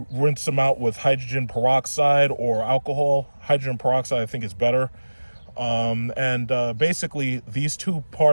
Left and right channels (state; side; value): inverted; both; correlation -1.00